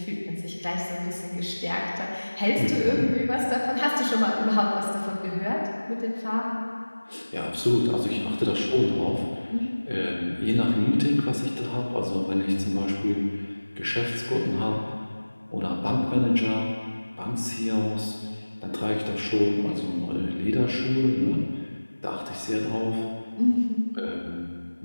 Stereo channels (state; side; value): inverted; both; correlation -1.00